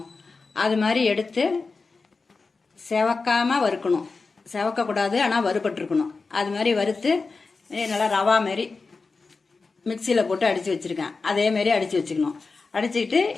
அது மாதிரி எடுத்து செவக்காமல் வறுக்கணும். செவக்கக்கூடாது, ஆனால் வறுபட்டுருக்கணும். அது மாதிரி வறுத்து நல்லா ரவா மாரி மிக்சியில் போட்டு அடித்து வச்சுருக்கேன். அதேமாரி அடித்து வச்சுக்கணும். அடிச்சுக்கிட்டு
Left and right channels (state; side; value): quieter; right; 4.2 dB